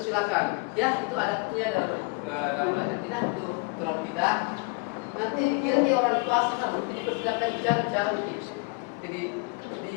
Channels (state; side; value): quieter; right; 28.9 dB